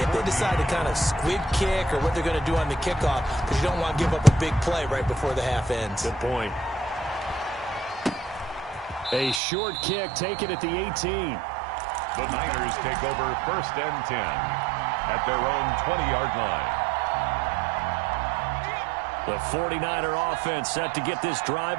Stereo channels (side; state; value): left; drops out; at 9.4 s